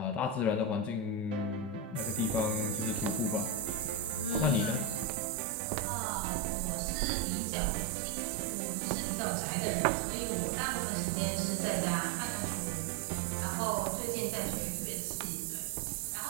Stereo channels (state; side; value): drops out; left; at 5.1 s